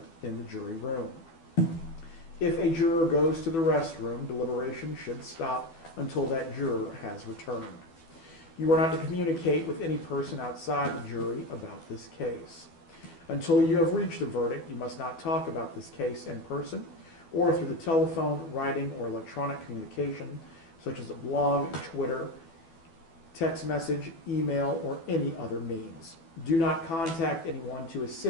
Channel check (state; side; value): late; right; 12 ms